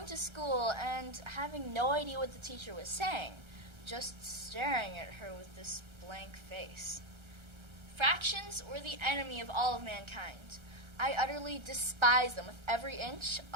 to school and having no idea what the teacher was saying, just staring at her with this blank face. Fractions were the enemy of all of mankind. I utterly despised them with every inch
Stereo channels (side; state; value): left; late; 1.3 ms